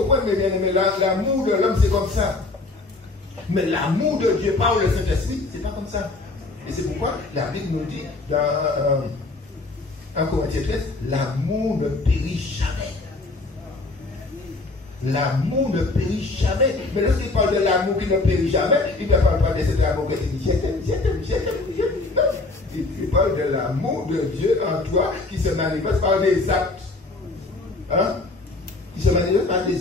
mes bien-aimés, l'amour de l'homme, c'est comme ça. Mais l'amour de Dieu par le Saint-Esprit, c'est pas comme ça. Et c'est pourquoi la Bible nous dit dans 1 Corinthiens 13, l'amour ne périt jamais. L'amour ne périt jamais. Mais lorsqu'il parle de l'amour qui ne périt jamais, il ne parle pas de cet amour que tu dis, il parle de l'amour de Dieu en toi qui se manifeste par des actes. Hein? Qui se manifeste par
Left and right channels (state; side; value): quieter; right; 3.3 dB